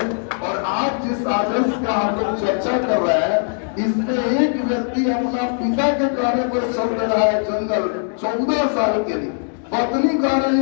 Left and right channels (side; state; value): right; silent; digital silence